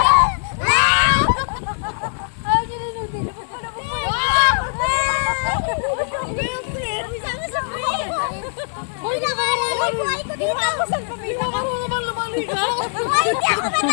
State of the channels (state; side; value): silent; right; digital silence